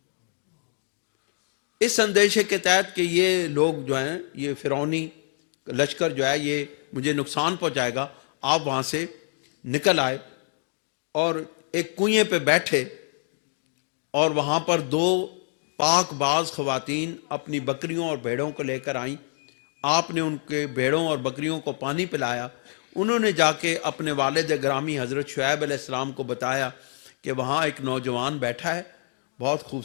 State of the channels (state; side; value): silent; right; 57 dB below the other